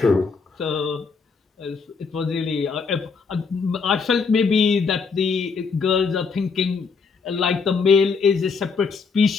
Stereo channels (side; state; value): right; quieter; 5.1 dB